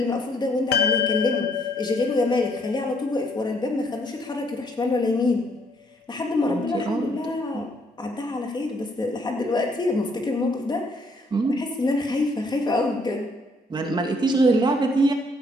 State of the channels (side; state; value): both; normal; correlation 0.67